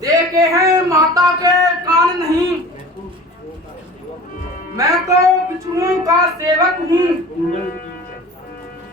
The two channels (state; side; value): normal; both; correlation 0.40